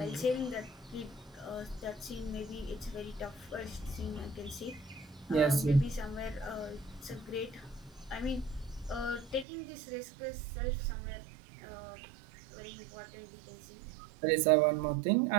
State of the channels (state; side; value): drops out; left; at 9.5 s